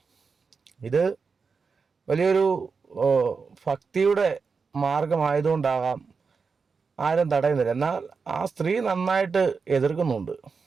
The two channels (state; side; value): quieter; left; 5.1 dB